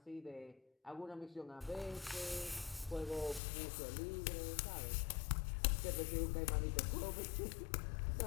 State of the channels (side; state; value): right; drops out; at 3.4 s